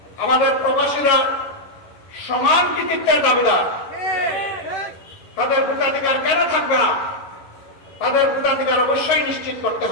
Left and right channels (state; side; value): late; right; 11 ms